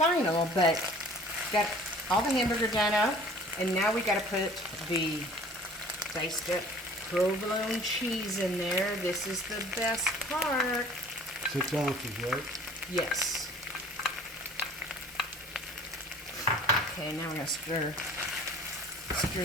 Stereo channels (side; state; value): both; normal; correlation 0.49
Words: but got all the hamburger done up, and now we gotta put the diced up provolone cheese in there. This is the best part. 6 ounces, right? Yes. Okay, now we're gonna stir